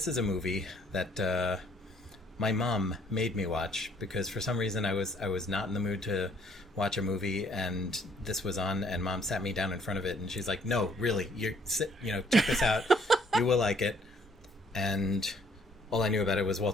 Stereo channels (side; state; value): both; normal; correlation 0.63